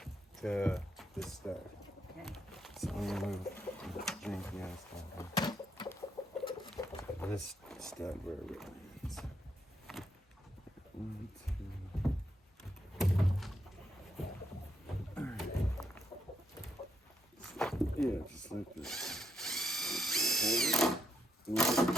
to this stud. Okay. So I'm gonna move the janky ass stuff. This stud wherever it is. 1, 2. Yeah, just like this. Hold it. A little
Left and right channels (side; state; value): both; normal; correlation 0.79